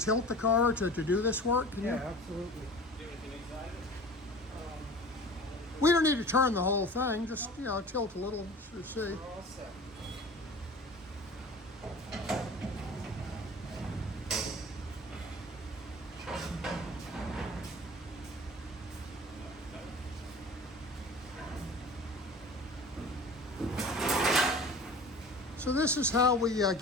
the car to do this work? Can you? Absolutely. We don't need to turn the whole thing, just, you know, tilt a little to see. We're all set. So this is how we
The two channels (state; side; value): normal; both; correlation 0.40